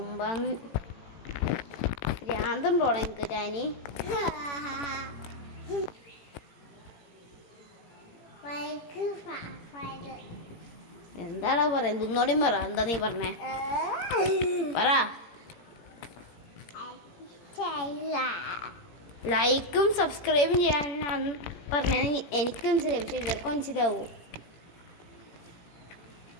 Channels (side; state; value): right; late; 18 ms